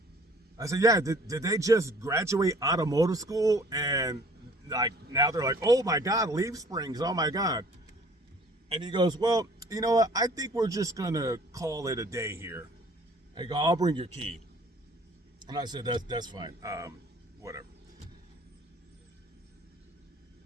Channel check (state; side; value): normal; both; correlation 0.53